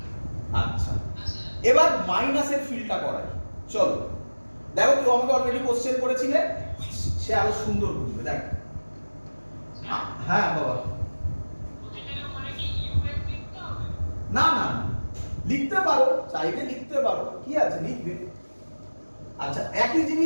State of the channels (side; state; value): both; inverted; correlation -1.00